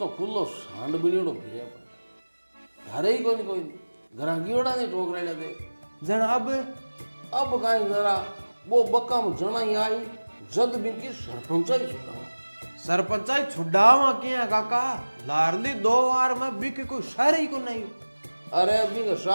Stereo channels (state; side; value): inverted; both; correlation -1.00